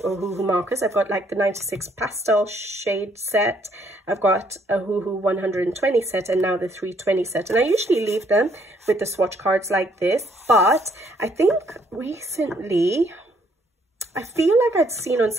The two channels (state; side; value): normal; both; correlation 0.68